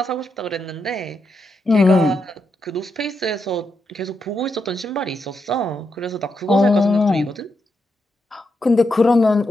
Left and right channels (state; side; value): normal; both; correlation 0.83